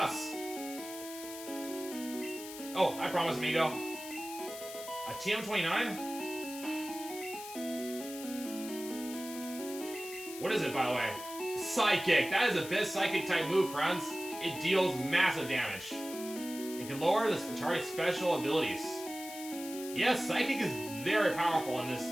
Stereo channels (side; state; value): left; noise; hiss, 12 dB below the sound